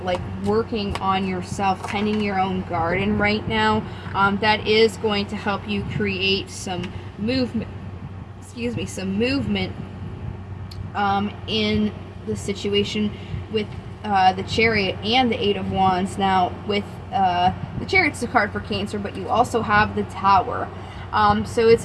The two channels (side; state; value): both; identical; correlation 1.00